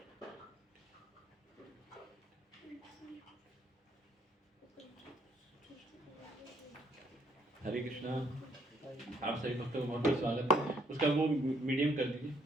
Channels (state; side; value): normal; both; correlation 0.68